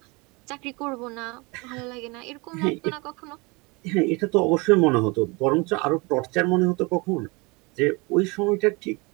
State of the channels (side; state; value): left; quieter; 27.0 dB